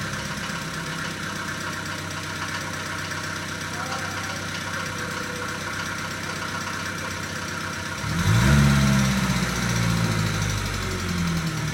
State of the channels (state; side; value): identical; both; correlation 1.00